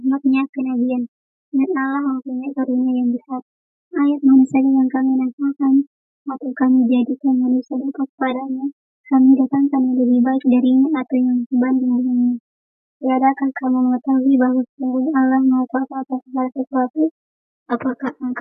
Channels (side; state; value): both; identical; correlation 1.00